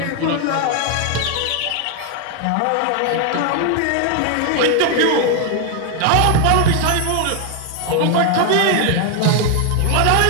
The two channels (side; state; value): both; different; correlation 0.00